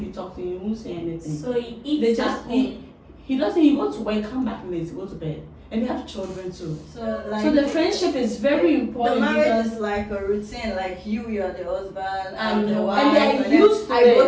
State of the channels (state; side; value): identical; both; correlation 1.00